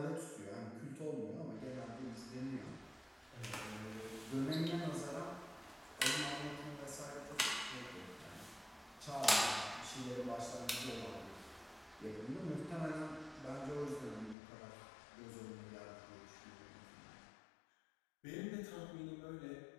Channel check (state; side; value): drops out; right; at 14.4 s